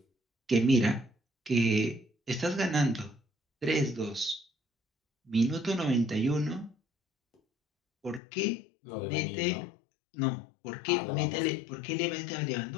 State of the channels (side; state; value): right; drops out; at 8.2 s